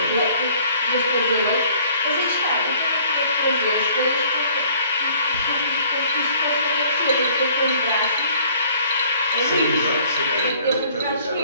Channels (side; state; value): both; inverted; correlation -0.56